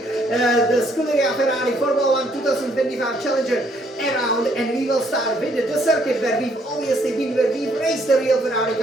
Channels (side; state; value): both; normal; correlation 0.68